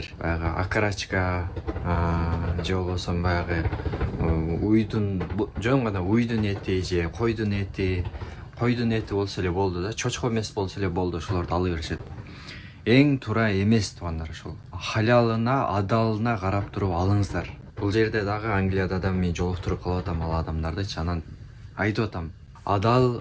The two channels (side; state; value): both; identical; correlation 1.00